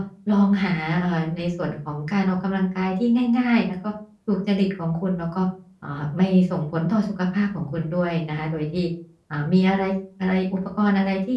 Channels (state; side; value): identical; both; correlation 1.00